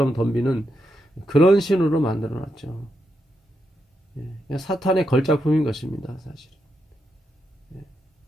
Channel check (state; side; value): normal; both; correlation 0.83